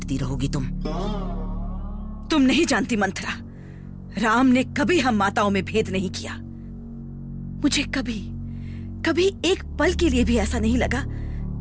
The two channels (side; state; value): both; identical; correlation 1.00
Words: रहोगी तुम। तुम नहीं जानती मंथरा, राम ने कभी हम माताओं में भेद नहीं किया। मुझे कभी कभी एक पल के लिए भी ऐसा नहीं लगा